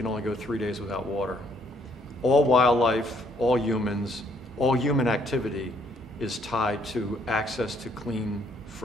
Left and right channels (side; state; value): both; normal; correlation 0.67